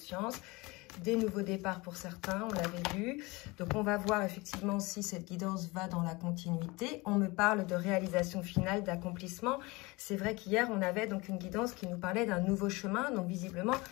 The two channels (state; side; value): quieter; right; 24.1 dB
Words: des nouveaux départs pour certains, on l'avait vu. Donc on va voir effectivement si cette guidance va dans la continuité. On me parle de réalisation finale, d'accomplissement. C'est vrai qu'hier, on avait donc une guidance qui nous parlait d'un nouveau chemin, donc visiblement,